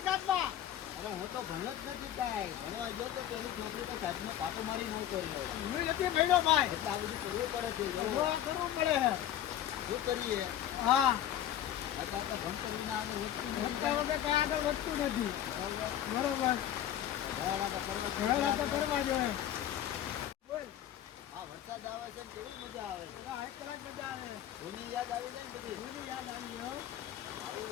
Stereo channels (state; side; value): quieter; right; 11.4 dB